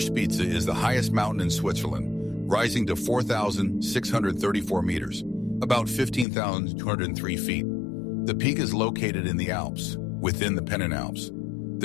is the highest mountain in Switzerland, rising to 4,634 meters, about 15,203 feet. The peak is located in the Alps, within the Pennine-Alps.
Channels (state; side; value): drops out; right; at 6.2 s